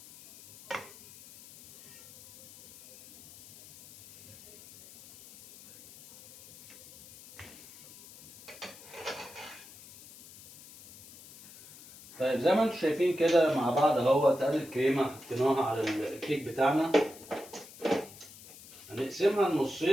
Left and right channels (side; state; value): left; noise; hiss, 20 dB below the sound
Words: طيب زي ما انتم شايفين كده مع بعض اهوت، ادي الكريمه حطيناها على الكيك بتاعنا. هنقسمها